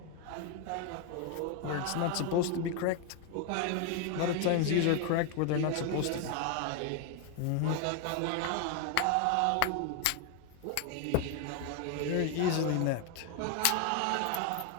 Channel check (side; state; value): both; different; correlation 0.01